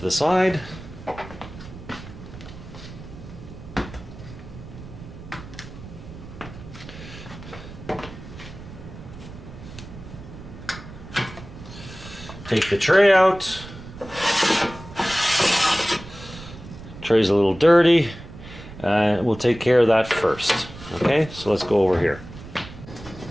the side. Take the tray out. Tray's a little dirty. We'll take care of that first. Okay, so let's go over here.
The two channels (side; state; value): right; noise; rumble, 15 dB below the sound